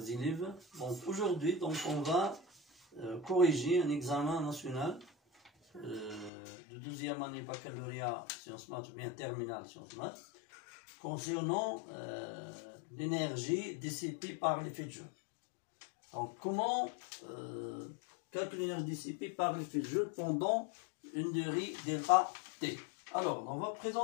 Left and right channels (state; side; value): drops out; right; at 6.3 s